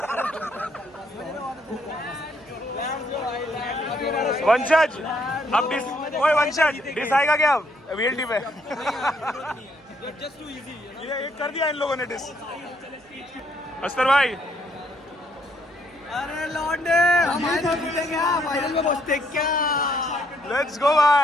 वंशज अब डिस ओए वंशज डिस आएगा क्या अब वीएलटी पे ये कर दिया इन लोगों ने डिस अस्तर भाई अरे लौंडे हमारे तो जीतेंगे क्या फाइनल में पहुंचते क्या। लेट्स गो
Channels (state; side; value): noise; right; hum, 29 dB below the sound